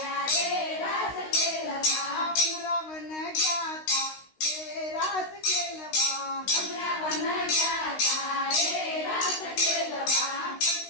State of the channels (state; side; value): late; right; 16 ms